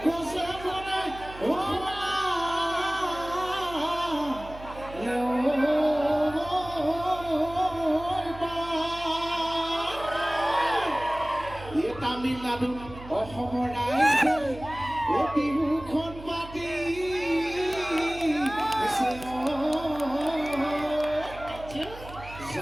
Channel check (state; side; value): noise; right; hum, 15 dB below the sound